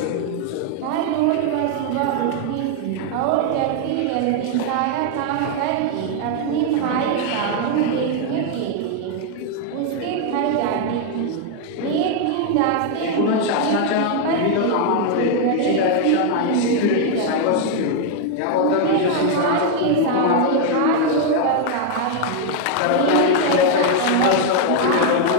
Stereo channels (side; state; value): both; different; correlation 0.00